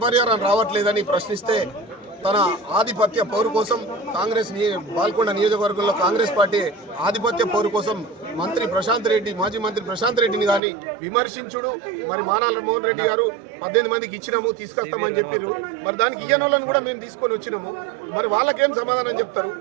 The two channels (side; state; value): left; drops out; at 10.6 s